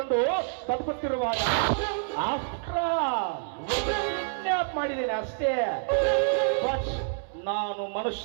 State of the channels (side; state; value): left; silent; 60 dB below the other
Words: ಬದುಕುತ್ತಿರುವಾಗ ಕಿಡ್ನಾಪ್ ಮಾಡಿದ್ದೇನೆ ಅಷ್ಟೇ. ಬಟ್ ನಾನು ಮನುಷ್ಯ